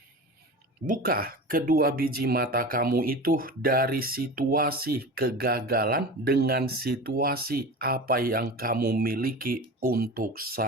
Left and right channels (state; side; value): normal; both; correlation 0.31